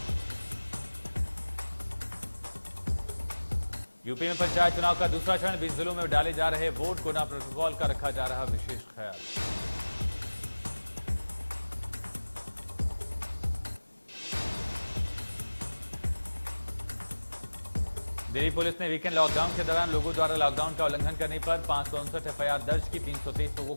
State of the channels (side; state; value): both; inverted; correlation -1.00